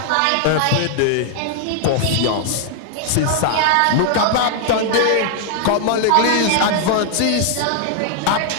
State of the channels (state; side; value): different; both; correlation 0.00